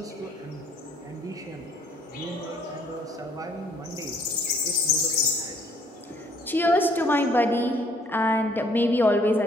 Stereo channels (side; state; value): both; normal; correlation 0.62